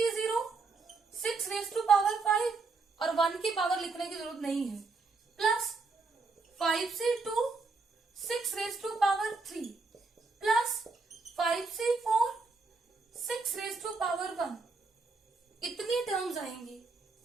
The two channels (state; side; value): quieter; left; 4.1 dB